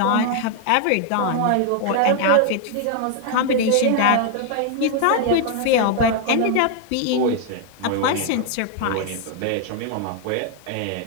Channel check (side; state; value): both; different; correlation 0.00